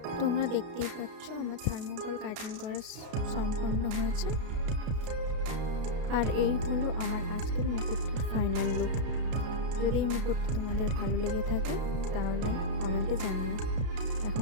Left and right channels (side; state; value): left; late; 33 ms